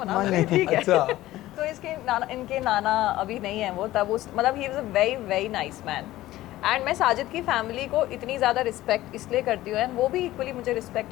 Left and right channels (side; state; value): right; quieter; 15.9 dB